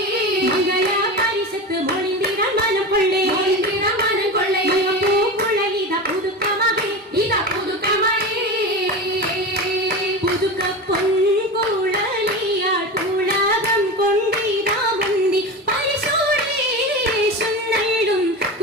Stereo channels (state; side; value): normal; both; correlation 0.25